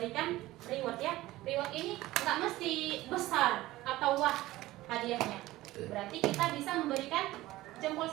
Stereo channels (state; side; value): quieter; left; 17.2 dB